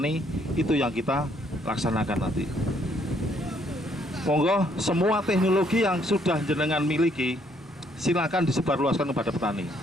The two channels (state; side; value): normal; both; correlation 0.68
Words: itu yang kita laksanakan nanti. Monggo semua teknologi yang sudah jenengan miliki, silakan disebarluaskan kepada petani.